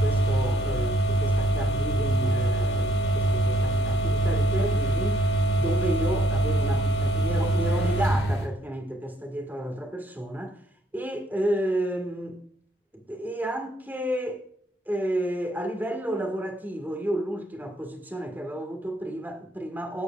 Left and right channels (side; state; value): both; normal; correlation 0.69